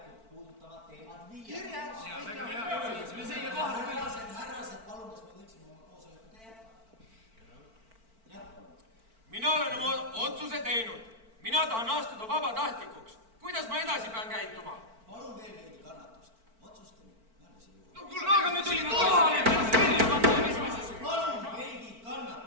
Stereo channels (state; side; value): late; left; 4.5 ms